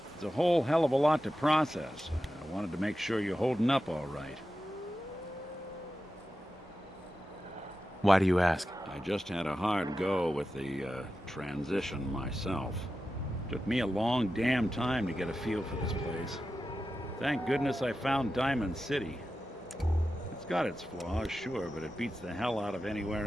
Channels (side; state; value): both; normal; correlation 0.92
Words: it's a whole hell of a lot to process. I wanted to make sure you're holding up all right. Why do you ask? I just had a hard go with the transition myself. Took me a long damn time to get a feel for this place. Thank goodness I found Diamond City. got its flaws, sure, but it beats the hell out of anywhere